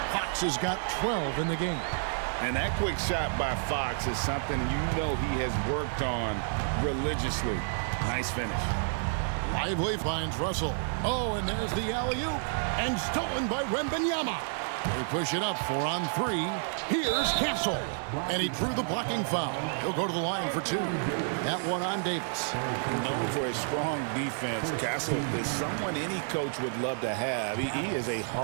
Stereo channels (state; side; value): silent; left; digital silence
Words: Fox has got 12 in the game. And that quick shot by Fox is something you know he has worked on religiously. Nice finish. Lively finds Russell. Oh, and there's the alley-oop. And stolen by Wembenyama. They push it up 4 on 3. Here's Castle. And he drew the blocking foul. He'll go to the line for 2. That one on Davis. Known for his strong defense, Castle is someone any coach would love to have. He is a